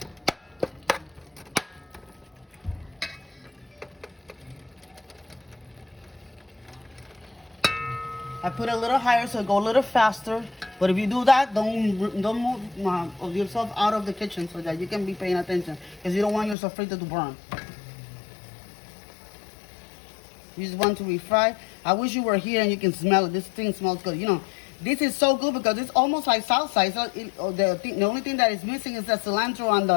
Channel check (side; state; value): right; drops out; at 16.6 s